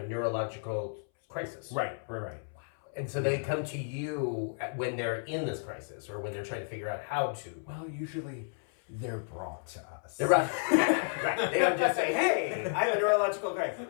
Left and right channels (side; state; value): right; silent; 56 dB below the other